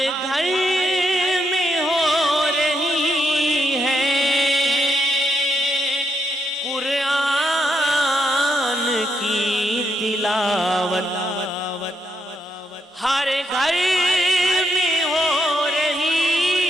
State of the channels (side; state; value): both; normal; correlation 0.78